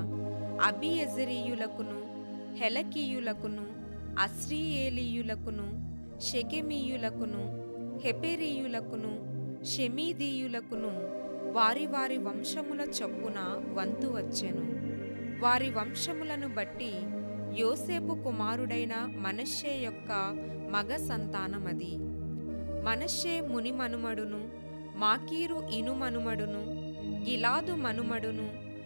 అబీయెజెరీయులకును హెలకీయులకును అస్రీయేలీయులకును షెకెమీయులకును హెపెరీయులకును షెమీదీయులకును వారి వారి వంశముల చొప్పున వంతు వచ్చెను. వారి వంశములను బట్టి యోసేపు కుమారుడైన మనష్షే యొక్క మగ సంతానమది. మనష్షే ముని మనుమడును, మాకీరు ఇను మనుమడును, గిలాదు మనుమడును,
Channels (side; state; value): both; inverted; correlation -1.00